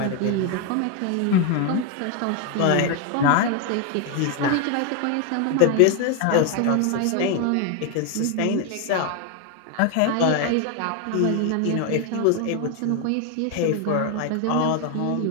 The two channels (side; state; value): both; different; correlation 0.01